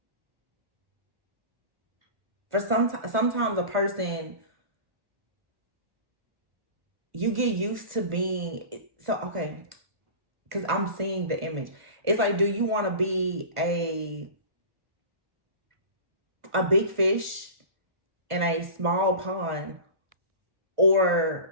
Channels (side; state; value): left; late; 1.5 ms